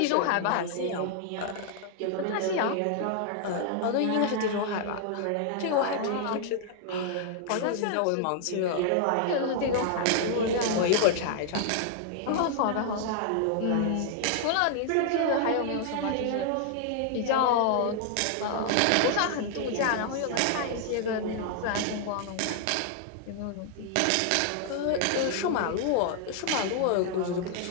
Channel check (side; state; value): both; different; correlation 0.00